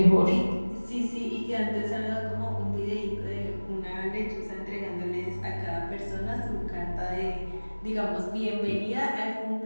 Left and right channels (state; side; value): inverted; both; correlation -1.00